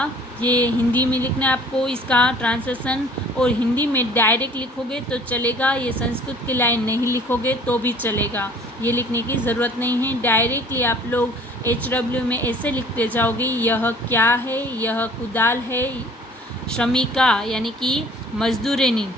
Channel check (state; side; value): normal; both; correlation 0.51